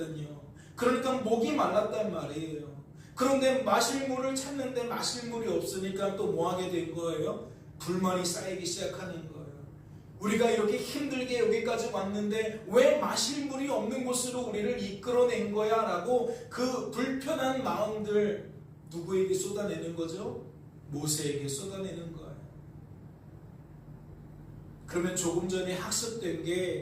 그러니까 목이 말랐단 말이에요. 그런데 마실 물을 찾는데 마실 물이 없으니까 또 뭐 하게 된 거예요? 불만이 쌓이기 시작하는 거예요. 우리가 이렇게 힘들게 여기까지 왔는데 왜 마실 물이 없는 곳으로 우리를 이끌어낸 거야? 라고 그 불편한 마음들 누구에게 쏟아내는 거죠? 모세에게 쏟아내는 거예요. 그러면 조금 전에 학습된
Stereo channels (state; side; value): identical; both; correlation 1.00